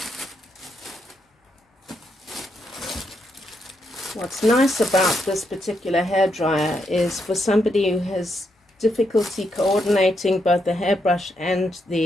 What's nice about this particular hairdryer is for somebody who has difficulty coordinating both the hairbrush and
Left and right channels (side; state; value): both; normal; correlation 0.80